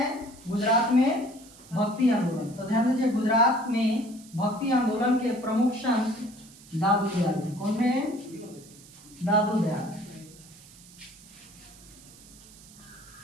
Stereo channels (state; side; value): noise; right; hiss, 21 dB below the sound